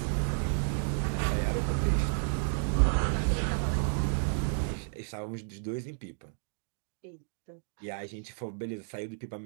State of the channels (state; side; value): silent; left; digital silence